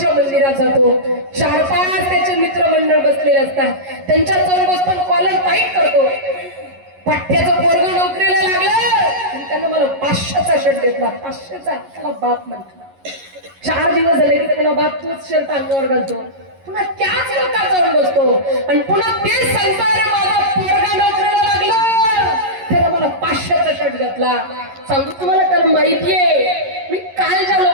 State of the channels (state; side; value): late; left; 11 ms